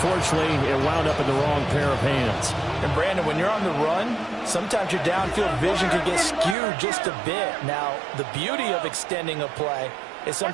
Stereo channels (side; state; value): left; drops out; at 6.6 s